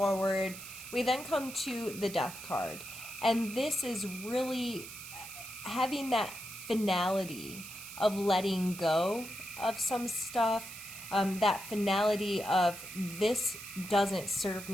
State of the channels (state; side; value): noise; right; hiss, 12 dB below the sound